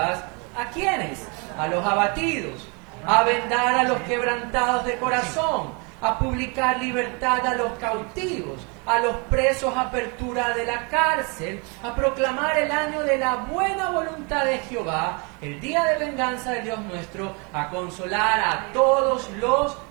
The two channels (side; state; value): left; quieter; 32.5 dB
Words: ¿A quiénes? A los abatidos, a vendar a los quebrantados de corazón, a publicar libertad a los cautivos, a los presos apertura de la cárcel, a proclamar el año de la buena voluntad de Jehová, el día de venganza de Dios nuestro, a consolar a todos los